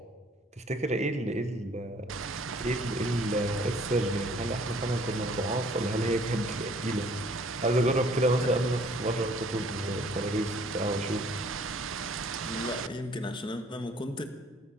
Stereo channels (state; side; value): normal; both; correlation 0.58